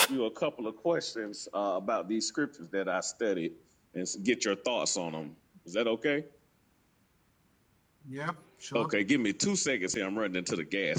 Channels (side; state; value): both; identical; correlation 1.00